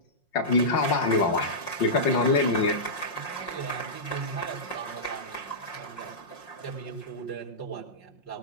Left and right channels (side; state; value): right; late; 5.6 ms